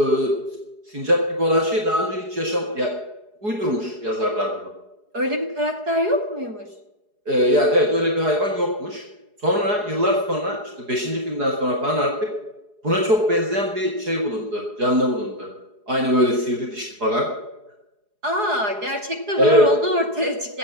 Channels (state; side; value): late; left; 4.8 ms